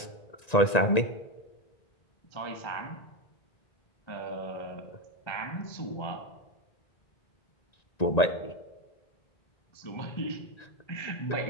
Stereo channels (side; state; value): right; late; 1.9 ms